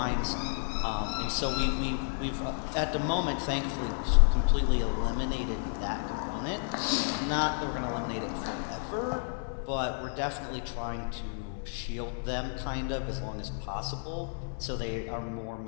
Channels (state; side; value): silent; right; 57 dB below the other